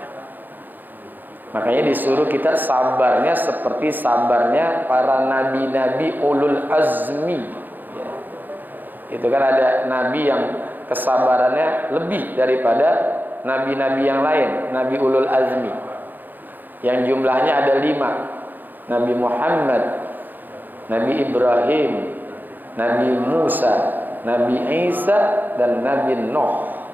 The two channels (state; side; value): late; left; 0.087 ms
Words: Makanya disuruh kita sabarnya seperti sabarnya para nabi-nabi ulul azmi. Ya. Itu kan ada nabi yang kesabarannya lebih daripada nabi-nabi yang lain, nabi ulul azmi, yang jumlahnya ada 5. Nabi Muhammad, Nabi Ibrahim, Nabi Musa, Nabi Isa, dan Nabi Nuh.